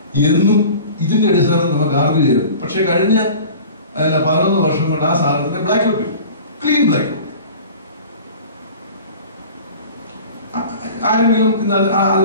എന്നും ഇതിന്റെ അടിസ്ഥാനത്തിൽ നമുക്ക് ആർഗ്യൂ ചെയ്തു. പക്ഷെ കഴിഞ്ഞ 11 വർഷം കൊണ്ട് ആ സാധനത്തിന്റെ ബ്ലാക്ക് ഔട്ട് ചെയ്തു, ക്ലീൻ ബ്ലാക്ക് ഔട്ട്. ആരെങ്കിലും ഇന്ന്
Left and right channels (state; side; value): inverted; both; correlation -0.41